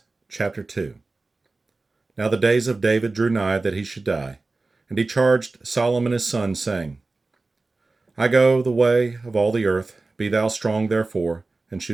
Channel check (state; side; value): quieter; left; 3.5 dB